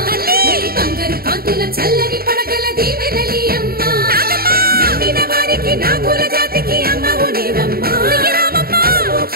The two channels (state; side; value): late; left; 0.44 ms